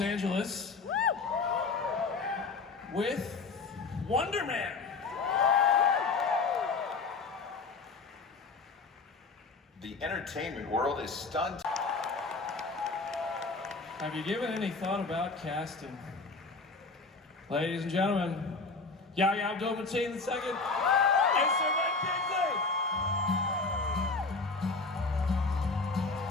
with Wonder Man. The entertainment world is stunned. Have you given any thought about casting? Ladies and gentlemen, Yahya Abdul-Mateen II and Sir Ben Kingsley!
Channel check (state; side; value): quieter; right; 4.1 dB